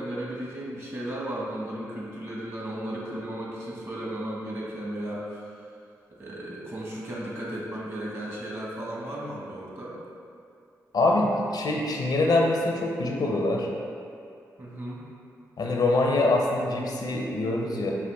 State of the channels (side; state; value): both; normal; correlation 0.75